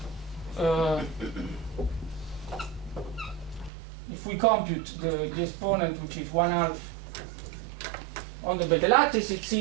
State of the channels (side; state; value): left; drops out; at 3.7 s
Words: if we compute the exponent, which is 1/2 on the beta lattice, it